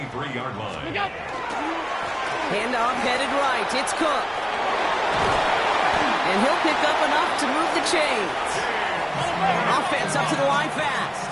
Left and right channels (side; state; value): both; identical; correlation 1.00